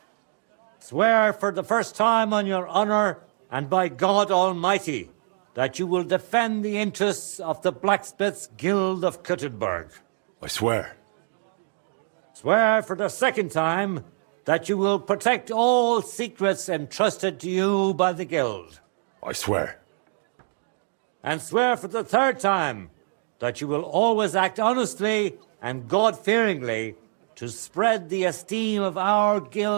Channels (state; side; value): silent; left; digital silence